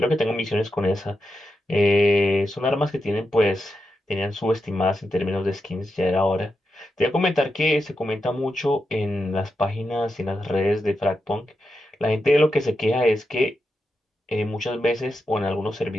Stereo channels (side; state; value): both; normal; correlation 0.87